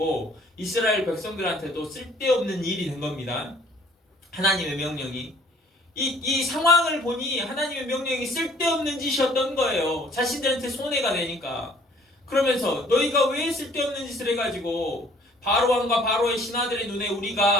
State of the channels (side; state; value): both; normal; correlation 0.56